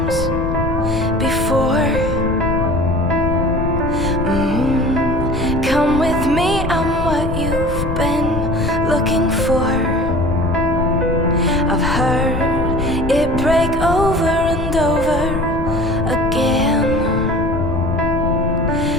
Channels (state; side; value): noise; left; rumble, 3 dB below the sound